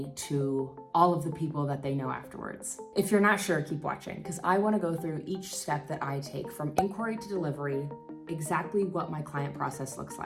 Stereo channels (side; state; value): both; identical; correlation 1.00